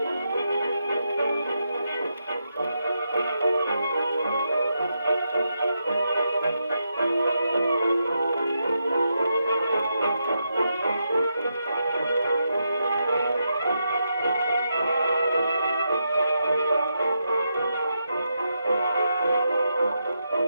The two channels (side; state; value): both; inverted; correlation -0.83